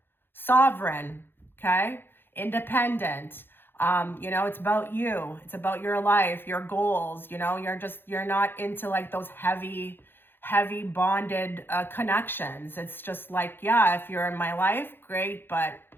sovereign, okay? Independent. It's about you. It's about your life, your goals. You're not into like those heavy bonded connections. It's just like, yeah, if you're in my life, great, but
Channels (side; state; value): right; late; 0.10 ms